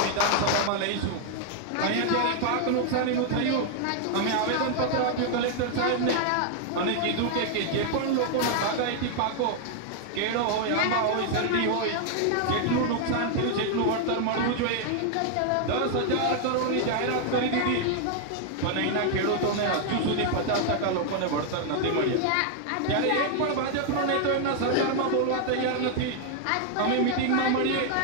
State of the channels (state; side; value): different; both; correlation 0.00